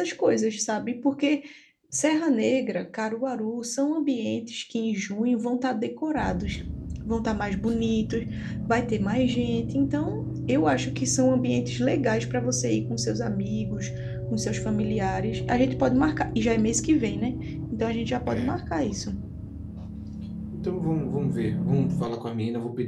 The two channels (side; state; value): both; identical; correlation 1.00